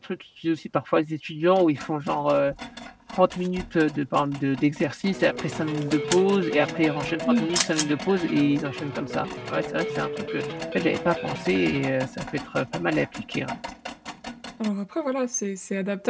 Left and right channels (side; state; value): both; identical; correlation 1.00